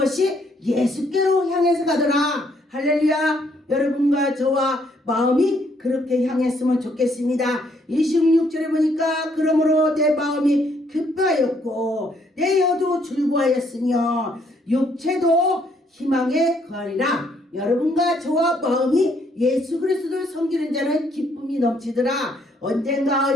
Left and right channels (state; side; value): normal; both; correlation 0.69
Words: 예수께로 향해서 가더라. 할렐루야. 여러분과 저와 마음이 그렇게 향했으면 좋겠습니다. 26절에 보니까 그러므로 내 마음이 급하였고 내 혀도 즐거워하였으며 육체도 희망에 거하리라. 여러분과 저와 마음이 예수 그리스도를 섬기는 자는 기쁨이 넘치더라.